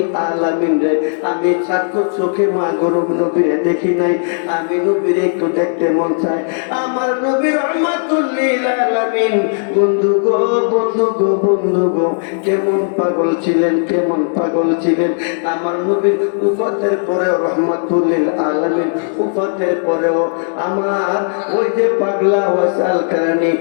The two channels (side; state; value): right; silent; digital silence